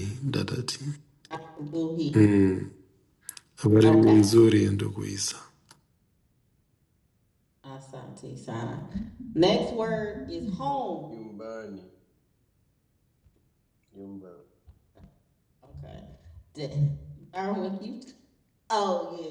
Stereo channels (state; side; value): identical; both; correlation 1.00